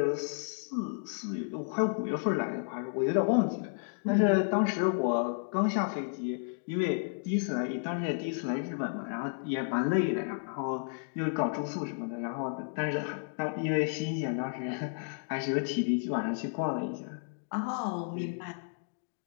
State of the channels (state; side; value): silent; right; digital silence